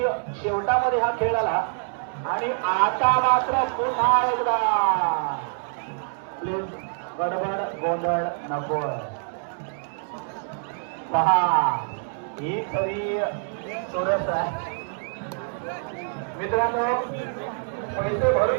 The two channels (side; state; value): left; silent; digital silence